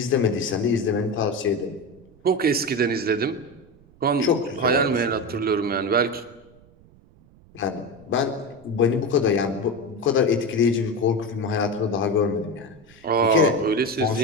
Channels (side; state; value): right; noise; rumble, 27 dB below the sound